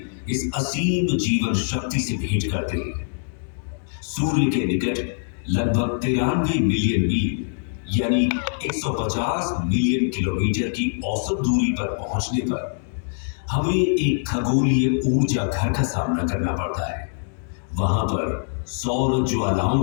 इस असीम जीवन शक्ति से भेंट करते हैं। सूर्य के निकट लगभग 93 मिलियन मील यानी 150 मिलियन किलोमीटर की औसत दूरी पर पहुंचने पर हमें एक खगोलीय ऊर्जा घर का सामना करना पड़ता है। वहां पर सौर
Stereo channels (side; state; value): right; silent; digital silence